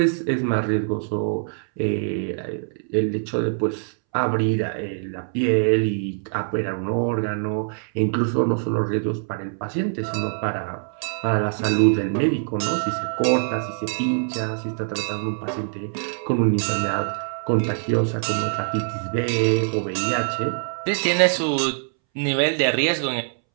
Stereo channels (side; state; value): left; silent; 63 dB below the other